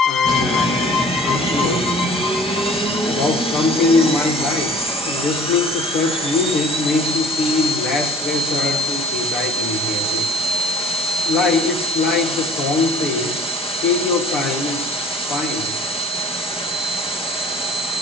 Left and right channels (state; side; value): normal; both; correlation 0.50